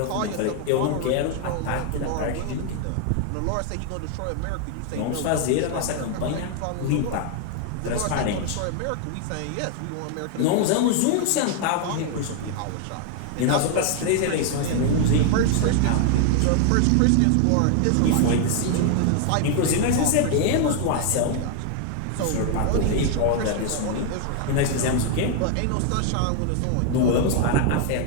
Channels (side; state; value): both; different; correlation 0.00